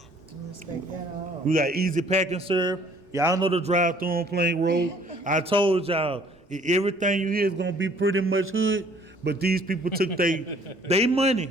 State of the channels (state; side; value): normal; both; correlation 0.58